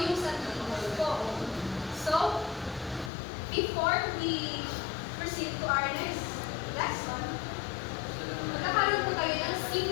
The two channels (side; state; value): right; drops out; at 3.1 s